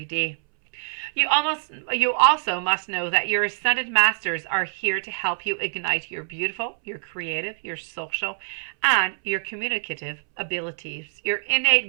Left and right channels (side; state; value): left; silent; 62 dB below the other